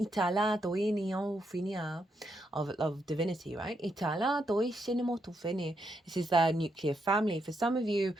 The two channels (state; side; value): normal; both; correlation 0.80